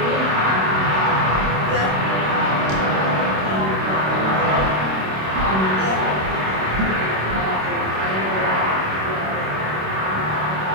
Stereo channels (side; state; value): left; late; 26 ms